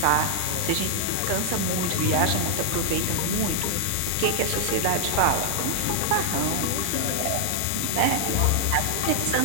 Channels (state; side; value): different; both; correlation 0.00